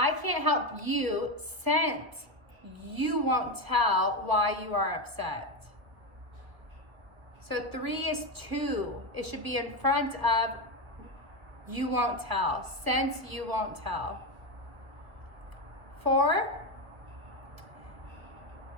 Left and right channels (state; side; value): late; left; 1.2 ms